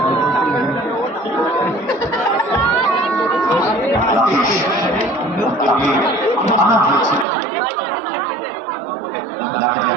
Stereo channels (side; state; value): left; drops out; at 7.2 s